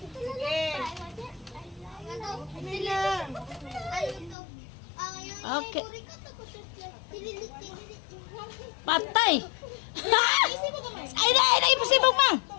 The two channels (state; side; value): drops out; right; at 4.4 s